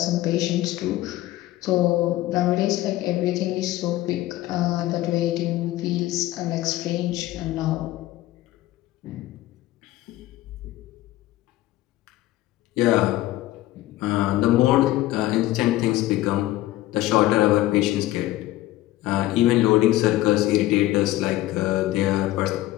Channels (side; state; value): right; quieter; 16.0 dB